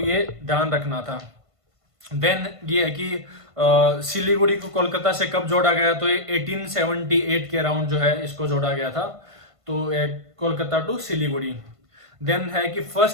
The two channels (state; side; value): late; left; 1.5 ms